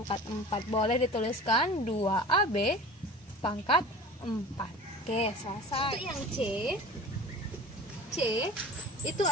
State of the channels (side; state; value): both; normal; correlation 0.39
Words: 4. Boleh dituliskan 2AB pangkat 4. Oke, selesai. Untuk yang C itu